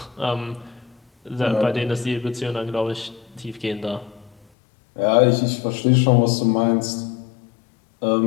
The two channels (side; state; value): right; drops out; at 4.5 s